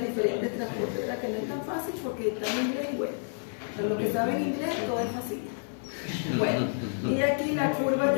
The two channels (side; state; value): right; silent; 56 dB below the other